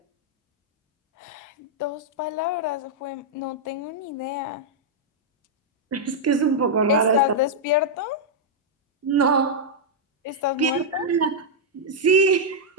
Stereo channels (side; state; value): both; normal; correlation -0.05